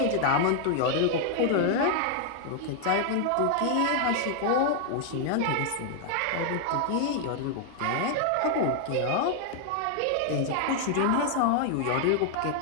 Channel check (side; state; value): both; different; correlation 0.00